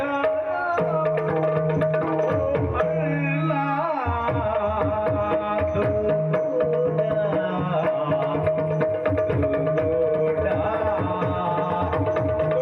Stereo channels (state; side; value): identical; both; correlation 1.00